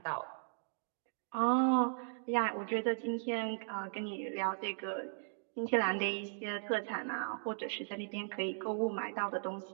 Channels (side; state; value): left; silent; digital silence